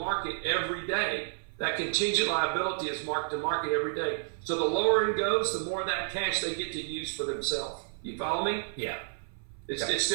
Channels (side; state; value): left; silent; 57 dB below the other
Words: every day. That contingent liability is marked to market every day. So the lower it goes, the more of that cash they get to use for themselves. You follow me? Yeah.